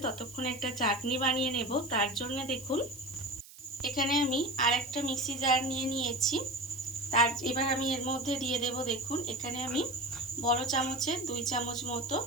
ততক্ষণ একটা চাটনি বানিয়ে নেব। তার জন্য দেখুন এখানে আমি আরেকটা মিক্সি জার নিয়ে নিয়েছি। এবার আমি এর মধ্যে দিয়ে দেব দেখুন এখানে আমি বড় চামচের 2 চামচ মতো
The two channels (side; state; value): right; noise; hiss, 19 dB below the sound